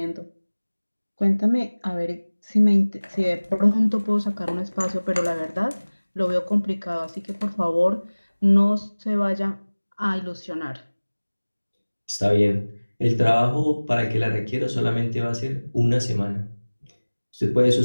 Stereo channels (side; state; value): both; inverted; correlation -1.00